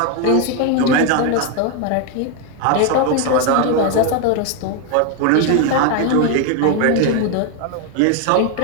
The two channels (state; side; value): different; both; correlation 0.01